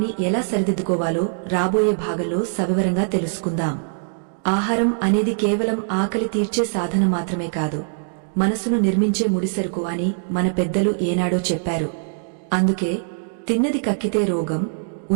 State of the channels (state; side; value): silent; left; digital silence